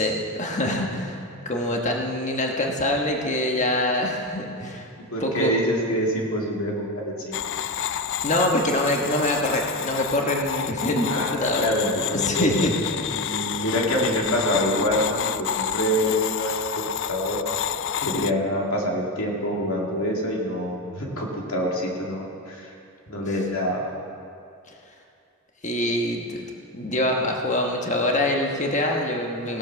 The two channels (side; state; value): both; normal; correlation 0.15